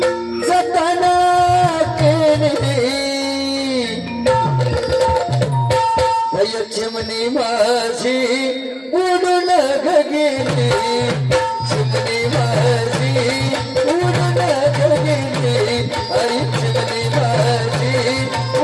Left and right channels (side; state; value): both; identical; correlation 1.00